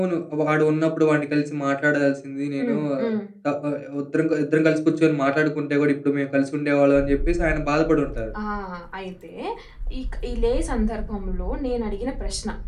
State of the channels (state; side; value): identical; both; correlation 1.00